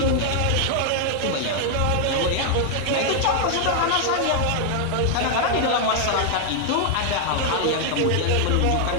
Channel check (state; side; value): different; both; correlation 0.00